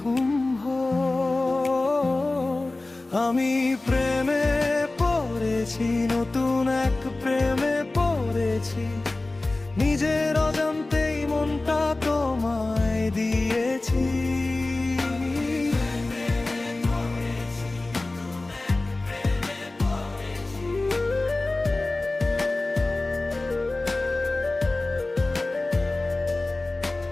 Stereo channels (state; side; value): quieter; right; 3.0 dB